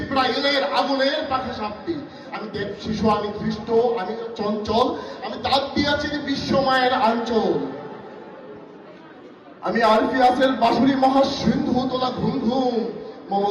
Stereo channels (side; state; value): both; identical; correlation 1.00